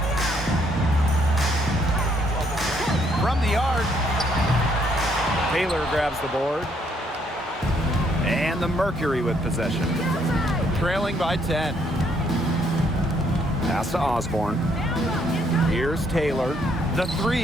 From the yard. Taylor grabs the board. And the Mercury with possession. Trailing by 10. Pass to Osborne. Here's Taylor. The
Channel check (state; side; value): normal; both; correlation 0.70